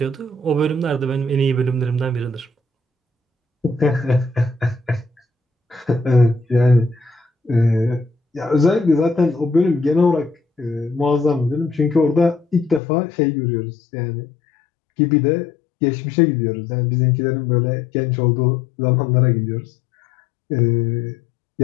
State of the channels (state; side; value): drops out; right; at 12.8 s